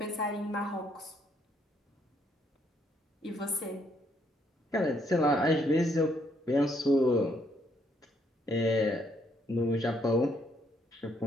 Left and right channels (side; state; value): both; normal; correlation 0.71